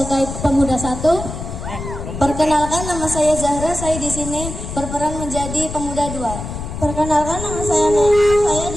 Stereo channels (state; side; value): noise; left; rumble, 8 dB below the sound